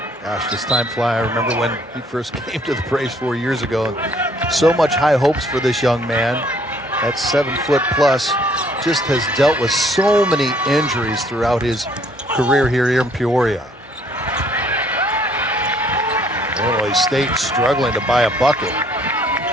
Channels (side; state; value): both; normal; correlation 0.63